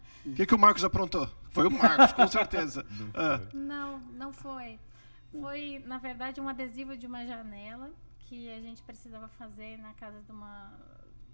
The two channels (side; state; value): both; inverted; correlation -1.00